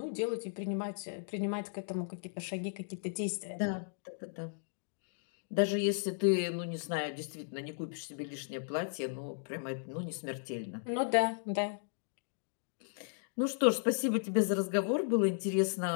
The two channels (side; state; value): right; silent; digital silence